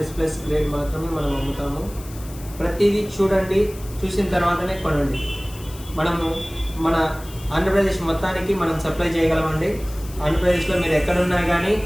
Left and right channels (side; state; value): left; noise; hiss, 18 dB below the sound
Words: గ్రేడ్ మాత్రమే మనం అమ్ముతాము. ప్రతిదీ చూడండి, చూసిన తర్వాతనే కొనండి. మనము మన ఆంధ్రప్రదేశ్ మొత్తానికి మనం సప్లై చేయగలమండి. ఆంధ్రప్రదేశ్లో మీరు ఎక్కడున్నా కానీ